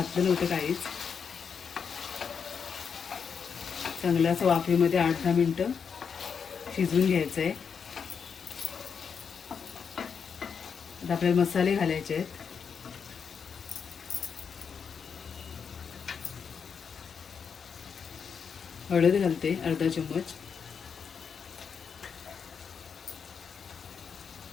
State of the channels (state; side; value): quieter; right; 6.5 dB